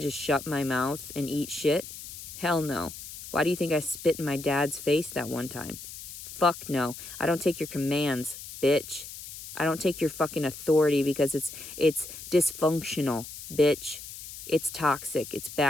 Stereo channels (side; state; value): left; noise; hiss, 12 dB below the sound